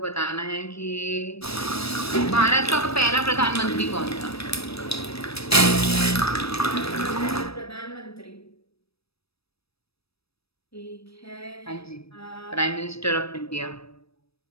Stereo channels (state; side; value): late; right; 0.78 ms